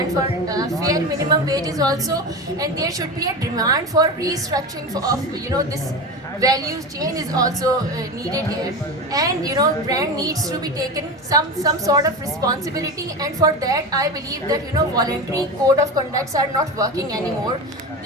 for fair minimum wages also, and there should be a demand for restructuring of this value chain is also needed here. And brand needs to be taken some sort of responsibility, and for that I believe that voluntary code of conducts are not working anymore.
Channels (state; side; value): normal; both; correlation 0.24